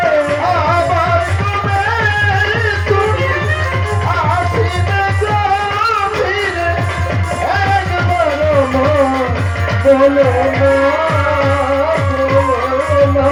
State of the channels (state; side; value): identical; both; correlation 1.00